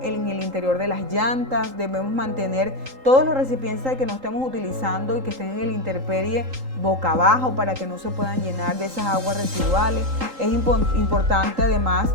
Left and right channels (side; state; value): left; late; 3.8 ms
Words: el interior de las llantas. Debemos mantener todos los recipientes que no estemos utilizando y que estén en el intemperie boca abajo, para que no se puedan llenar de esas aguas residuales. Es importante además